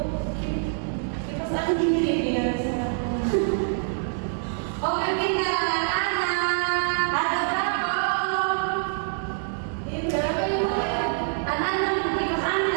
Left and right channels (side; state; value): left; silent; digital silence